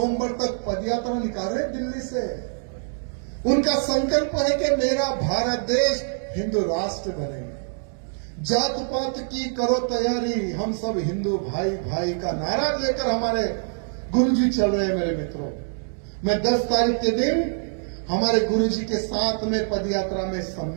तक पदयात्रा निकाल रहे दिल्ली से। उनका संकल्प है कि मेरा भारत देश हिंदू राष्ट्र बने। जात पात की करो तैयारी, हम सब हिंदू भाई भाई का नारा लेकर हमारे गुरुजी चल रहे हैं मेरे मित्रों। मैं 10 तारीख के दिन हमारे गुरुजी के साथ में पदयात्रा में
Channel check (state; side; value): silent; left; digital silence